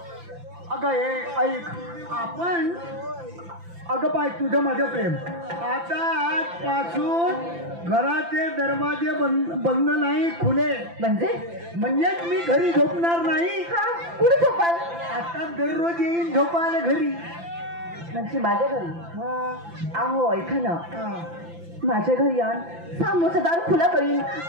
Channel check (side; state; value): left; late; 5.9 ms